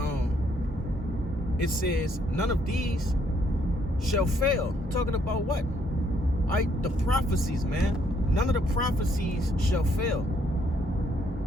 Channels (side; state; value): both; normal; correlation 0.70